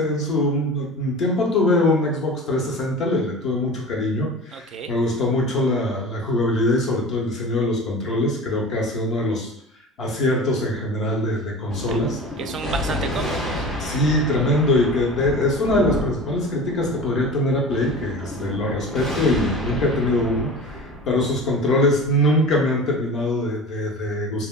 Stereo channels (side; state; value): both; normal; correlation 0.35